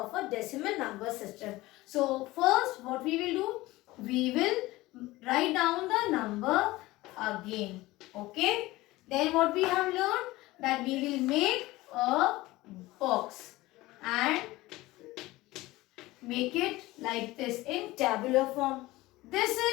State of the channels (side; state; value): right; quieter; 19.0 dB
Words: a decimal number system. So first what we will do, we will write down the number again. Okay. Then what we have learned, that we will make a box and make it like this in tabular form. This